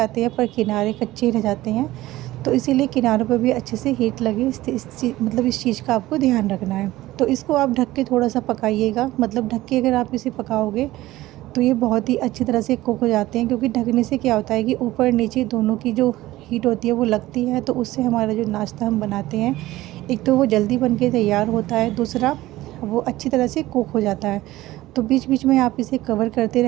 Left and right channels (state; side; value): quieter; left; 16.8 dB